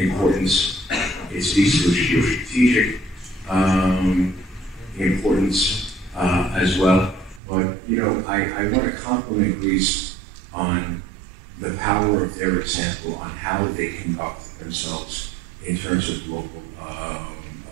It speaks to its geostrategic importance as well. But I want to compliment Greece on the power of their example on how they conduct themselves in terms of global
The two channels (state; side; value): drops out; left; at 7.4 s